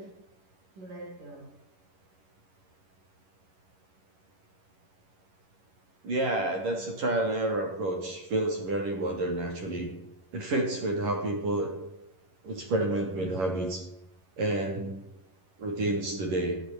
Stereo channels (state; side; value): late; left; 11 ms